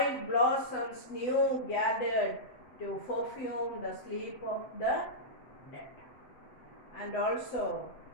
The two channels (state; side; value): late; right; 8.0 ms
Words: blossoms new gathered to perfume the sleep of the dead. And also